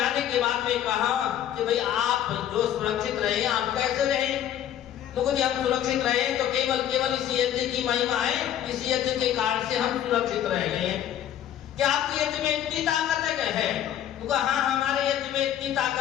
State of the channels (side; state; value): right; quieter; 10.9 dB